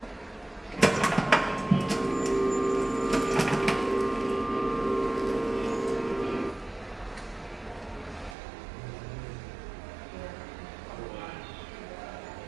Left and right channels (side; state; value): left; drops out; at 8.3 s